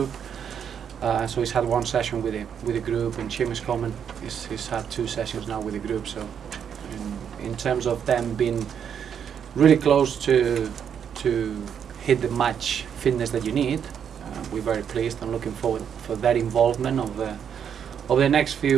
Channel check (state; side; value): quieter; left; 8.0 dB